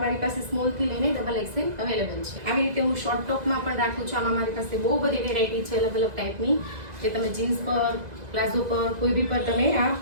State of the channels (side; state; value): left; late; 2.0 ms